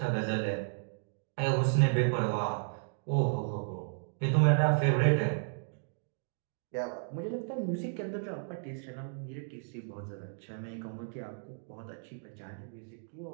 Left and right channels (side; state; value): left; silent; digital silence